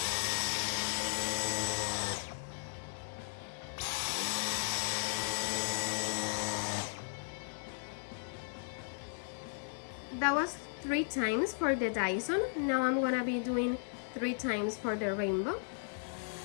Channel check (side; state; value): right; silent; digital silence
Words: That was 3 times for the Dyson. Now I'm gonna be doing 3 times for the Rainbow.